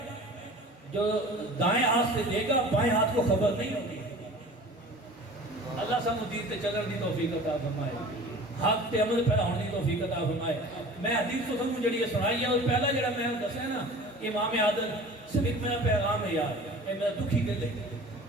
جو دائیں ہاتھ سے دے گا بائیں ہاتھ کو خبر نہیں ہوگی۔ اللہ سانو دین تے چلن دی توفیق عطا فرمائے، حق تے عمل پیدا ہونے دی توفیق عطا فرمائے۔ میں حدیث تو سانو جڑی سنائی ہے اور پہلا جڑا میں دسیا نا امام عادل صرف میرا پیغام ہے یار، اے میرا دکھی دل ہے۔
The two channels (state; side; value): normal; both; correlation 0.41